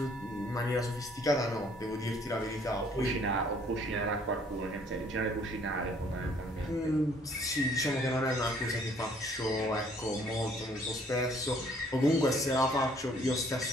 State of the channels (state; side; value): normal; both; correlation 0.61